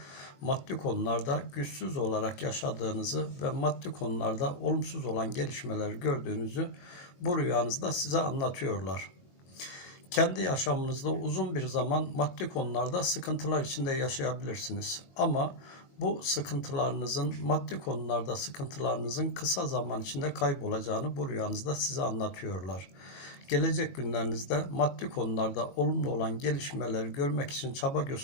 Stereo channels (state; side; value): late; right; 22 ms